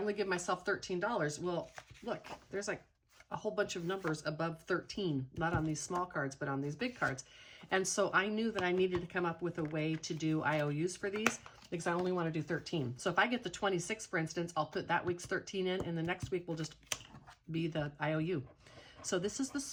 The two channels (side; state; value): both; identical; correlation 1.00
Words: give myself $13. Well, look, there's like a whole bunch of numbers above 13, not on these small cards, but on these big cards. And so I knew that I needed to come up with a way to do IOUs for these because I only want to do 13. So if I get the 26, for instance, I'll put that week's 13 in, and the next week will just be the IOU. So this is the